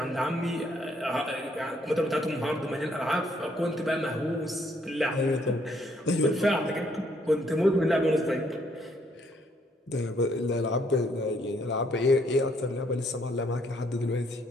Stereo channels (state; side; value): normal; both; correlation 0.69